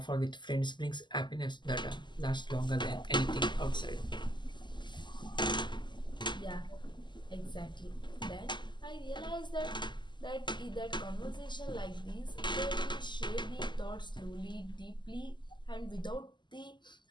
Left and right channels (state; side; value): late; right; 0.22 ms